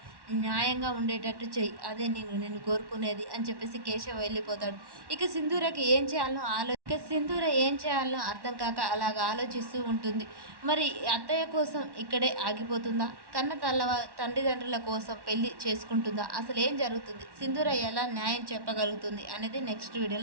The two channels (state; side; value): late; left; 1.1 ms